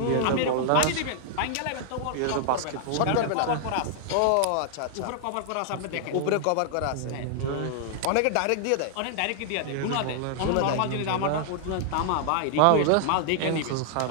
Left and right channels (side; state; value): both; different; correlation -0.01